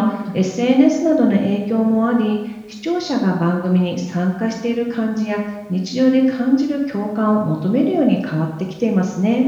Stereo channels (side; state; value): both; identical; correlation 1.00